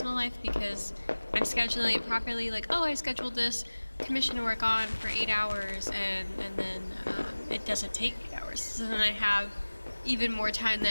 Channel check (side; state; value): both; inverted; correlation -1.00